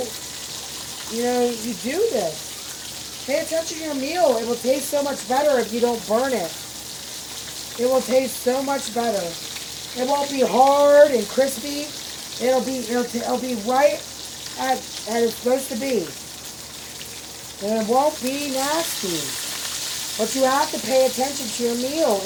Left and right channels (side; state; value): both; identical; correlation 1.00